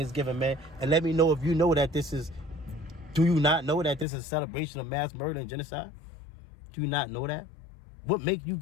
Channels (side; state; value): right; drops out; at 4.0 s